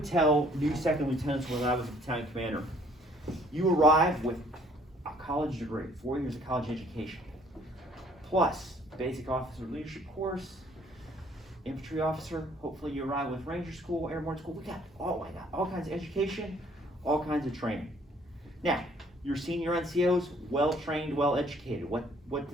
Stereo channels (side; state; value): both; normal; correlation 0.60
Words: tell new second lieutenants when I was a battalion commander, you arrive with a college degree, 4 years of college education, plus basic officer leadership course, infantry officer, hopefully you arrive with Ranger School, Airborne School. We got all kinds of education, all kinds of training. Now, your senior NCOs, well trained, well educated. What